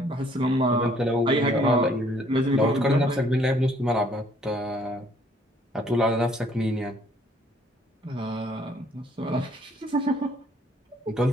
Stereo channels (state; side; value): normal; both; correlation 0.62